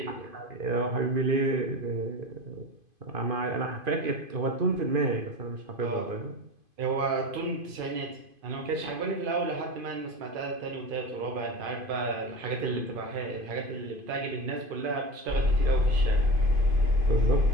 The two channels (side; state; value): left; late; 2.5 ms